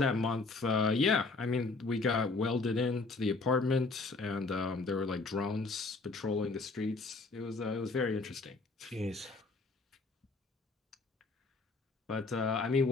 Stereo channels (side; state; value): right; quieter; 3.7 dB